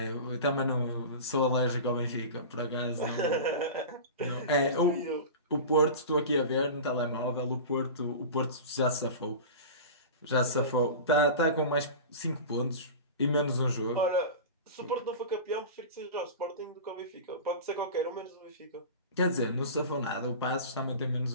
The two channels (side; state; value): both; inverted; correlation -0.31